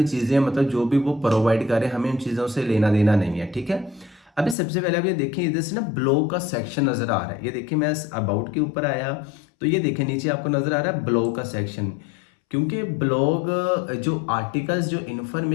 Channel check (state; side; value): drops out; right; at 4.5 s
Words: चीज़ें, मतलब जो भी वो प्रोवाइड करें हमें उन चीज़ों से लेना देना नहीं है, ठीक है। अभी सबसे पहले आप ये देखिए, इधर से ना ब्लॉग का सेक्शन नजर आ रहा है। ये देखिए मैं अबाउट के ऊपर आया तो ये देखिए नीचे आपको नजर आ रहा है ब्लॉग का सेक्शन। क्योंकि ब्लॉग जो आर्टिकल्स, जो